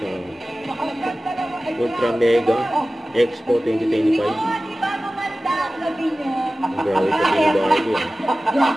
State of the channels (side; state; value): both; normal; correlation 0.96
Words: Ultra Mega Expo 2025. Ang grabe pa ni Barbie eh.